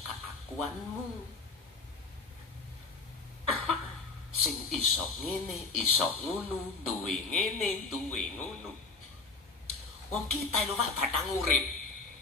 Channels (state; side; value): quieter; right; 4.1 dB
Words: keakuanmu. Sing iso ngene, iso ngono, duwe ngene, duwe ngono. Wong kita lho Pak batang urip.